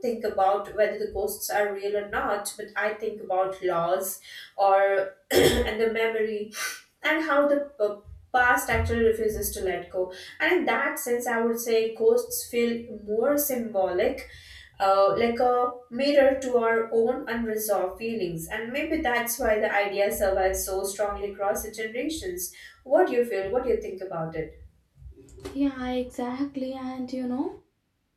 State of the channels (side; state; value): both; identical; correlation 1.00